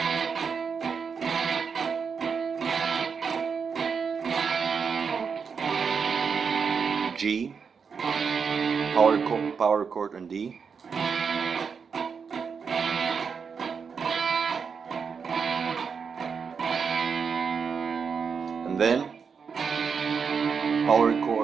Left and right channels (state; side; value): quieter; left; 6.0 dB